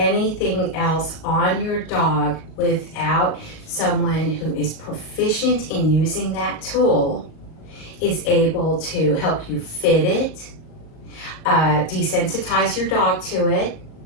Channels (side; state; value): right; late; 38 ms